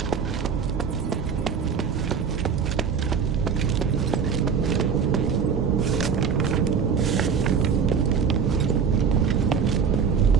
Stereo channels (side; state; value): left; quieter; 6.5 dB